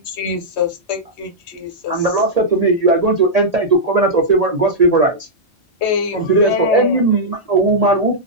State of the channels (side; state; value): both; normal; correlation -0.09